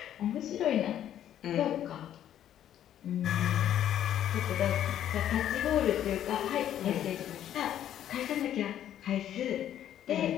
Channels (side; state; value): right; quieter; 10.9 dB